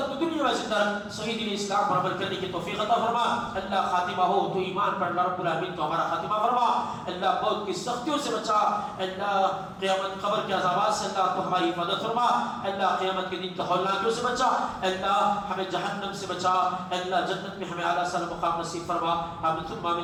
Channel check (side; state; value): both; identical; correlation 1.00